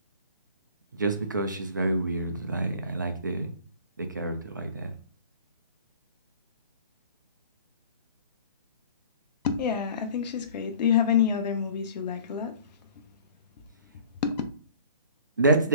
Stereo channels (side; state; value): both; inverted; correlation -0.47